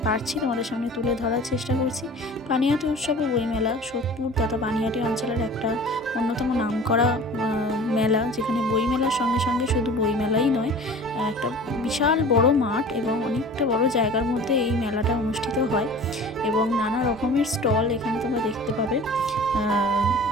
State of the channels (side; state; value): both; normal; correlation 0.41